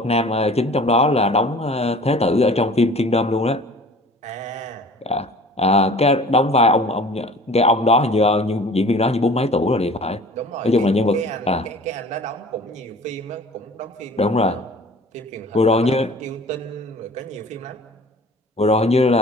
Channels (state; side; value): normal; both; correlation 0.46